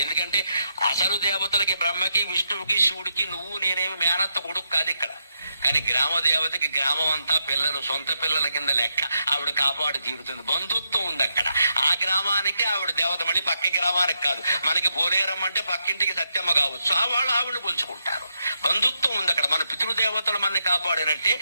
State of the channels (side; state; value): both; inverted; correlation -0.81